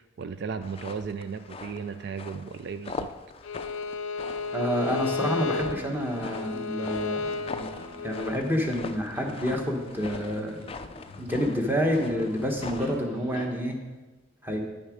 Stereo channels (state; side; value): normal; both; correlation 0.48